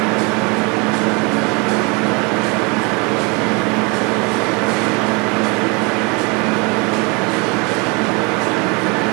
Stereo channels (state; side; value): quieter; left; 29.6 dB